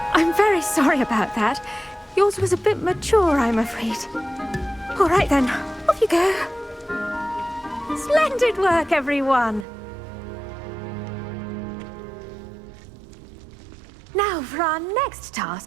I'm very sorry about that. Yours was a bit mature, I'm afraid. All right then, off you go. Splendid work, everyone. Now, for our next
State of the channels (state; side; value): drops out; left; at 9.7 s